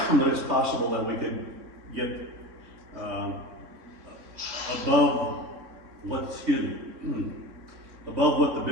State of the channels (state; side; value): late; left; 3.6 ms